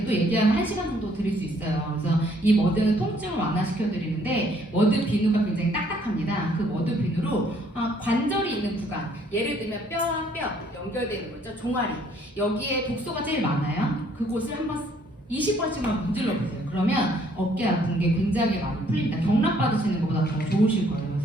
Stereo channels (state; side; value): normal; both; correlation 0.64